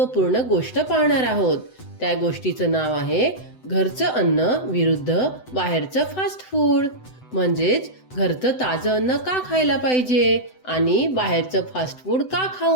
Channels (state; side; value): late; right; 7.9 ms